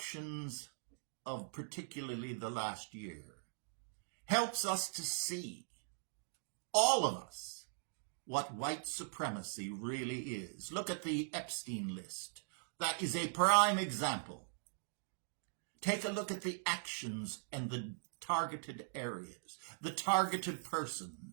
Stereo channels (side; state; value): left; silent; digital silence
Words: of particularly the last year helps us to see, all of us, what white supremacy really is. Look at the Epstein list. That is a prime example. Take a look at the actions and the targeted areas, the targeted